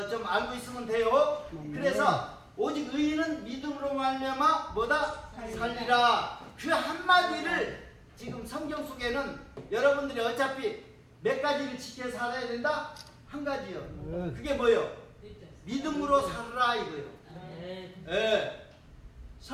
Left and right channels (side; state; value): both; identical; correlation 1.00